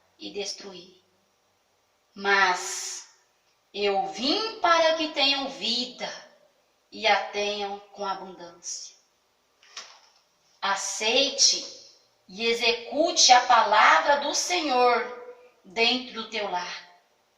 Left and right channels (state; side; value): identical; both; correlation 1.00